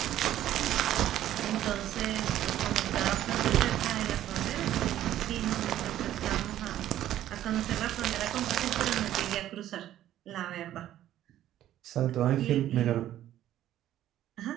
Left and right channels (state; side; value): quieter; left; 12.5 dB